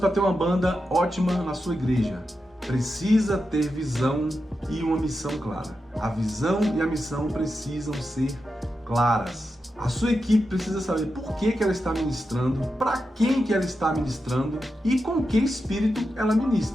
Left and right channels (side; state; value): both; normal; correlation 0.89